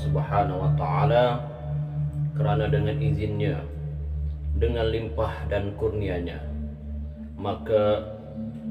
wa taala kerana dengan izinnya, dengan limpah dan kurnianya, maka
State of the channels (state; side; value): identical; both; correlation 1.00